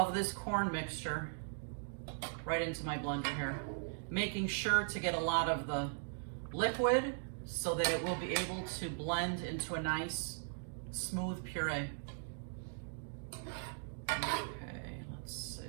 this corn mixture right into my blender here, making sure to get a lot of the liquid so that it will be able to blend into a nice smooth puree. Okay, let's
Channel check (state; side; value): silent; left; digital silence